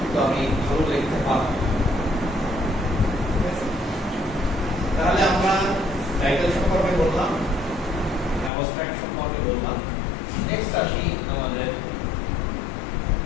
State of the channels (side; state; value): right; drops out; at 8.5 s